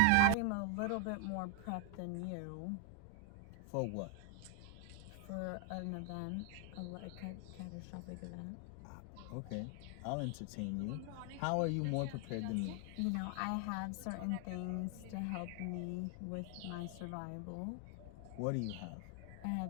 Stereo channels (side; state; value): both; different; correlation 0.01